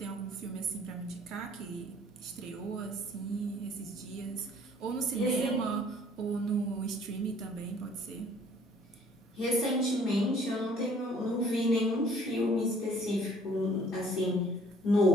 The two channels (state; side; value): normal; both; correlation 0.56